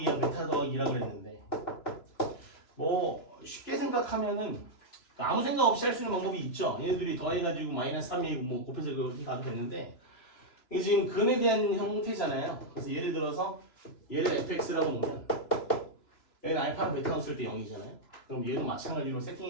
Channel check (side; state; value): right; late; 3.0 ms